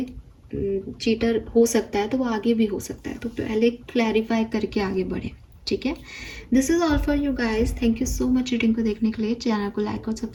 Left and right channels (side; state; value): both; identical; correlation 1.00